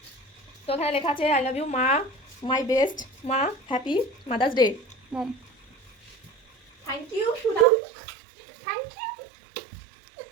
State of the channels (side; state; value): left; drops out; at 7.7 s